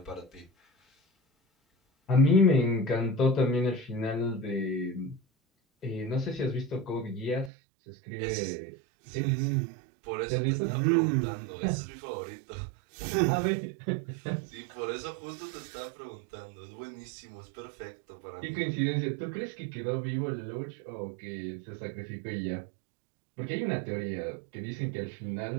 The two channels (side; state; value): left; drops out; at 7.5 s